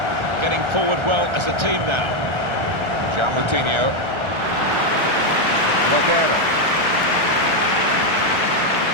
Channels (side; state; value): left; late; 1.4 ms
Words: Getting forward well as a team now. João Moutinho. Lodeiro.